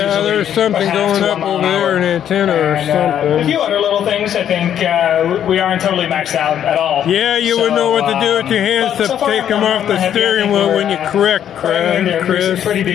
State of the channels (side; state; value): right; quieter; 9.9 dB